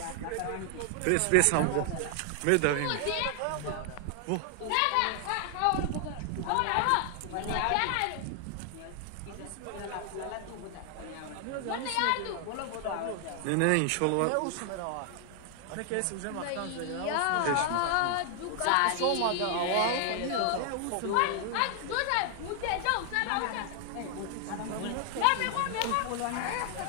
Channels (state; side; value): different; both; correlation 0.00